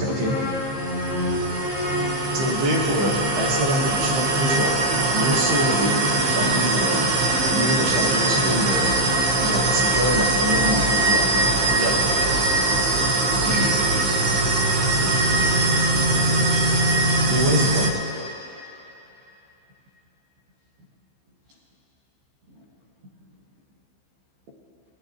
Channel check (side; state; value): left; late; 15 ms